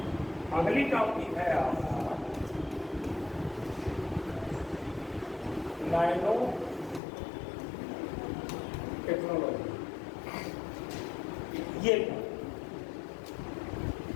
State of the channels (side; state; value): right; drops out; at 7.0 s